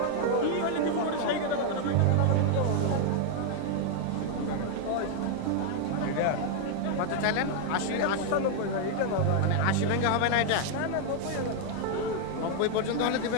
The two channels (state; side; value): different; both; correlation 0.00